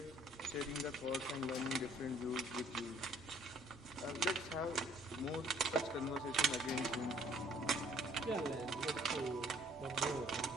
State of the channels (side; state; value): both; normal; correlation 0.59